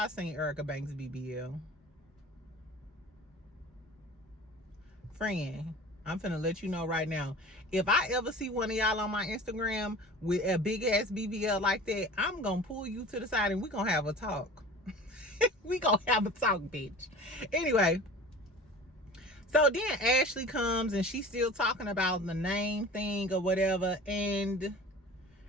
seen Erica Banks BBL. Friend, I'm finna let you know right now, if I ever see one of y'all on my Instagram with a big ass BBL like that, I'm gonna pull you to the side and we gonna have a talk. We gonna have a talk, bitch. Anyway, so then Ashley comes and she's still talking about the name thing or whatever, and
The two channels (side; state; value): both; normal; correlation 0.39